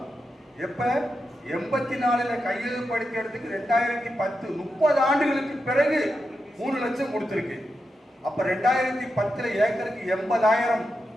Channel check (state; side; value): normal; both; correlation 0.87